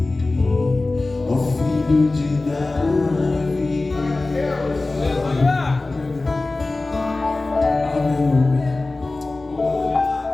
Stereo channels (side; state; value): right; quieter; 3.2 dB